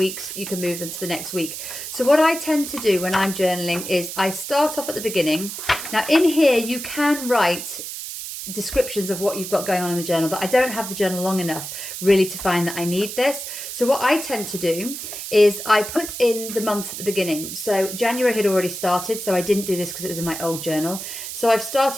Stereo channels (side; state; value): right; noise; hiss, 8 dB below the sound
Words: You can move them to the next week. So what I tend to do when I'm journaling is I start off at the beginning. Now in here you can write descriptions of what you've got going on in the journal, but I don't have the journal long enough really to find that I need this. So what I tend to do is I put in the month at the beginning. So January had already started, so I didn't do this because it was in my old journal. So I've